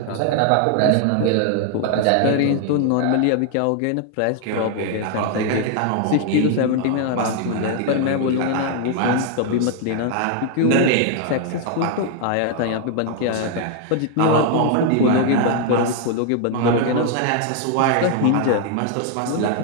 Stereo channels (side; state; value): both; different; correlation 0.00